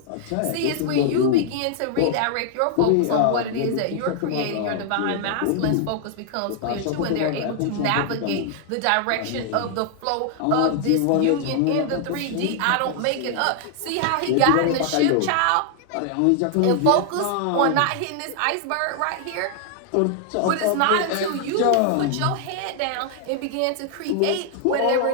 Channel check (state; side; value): different; both; correlation 0.00